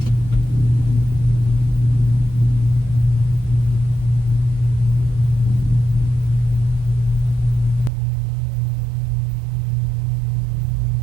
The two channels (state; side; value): drops out; left; at 7.9 s